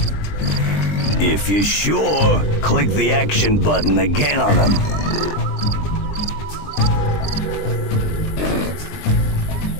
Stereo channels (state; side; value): late; right; 20 ms